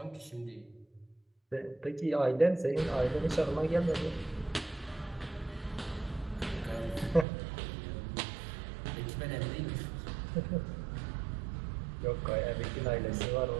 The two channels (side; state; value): left; drops out; at 7.2 s